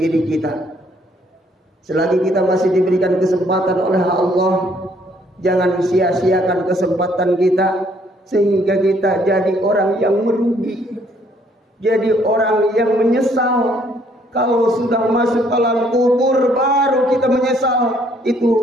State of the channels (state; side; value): normal; both; correlation 0.65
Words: kita. Selagi kita masih diberikan kesempatan oleh Allah, jangan sia-siakan kesempatan kita sehingga kita jadi orang yang merugi, jadi orang yang menyesal. Kalau sudah masuk alam kubur baru kita menyesal,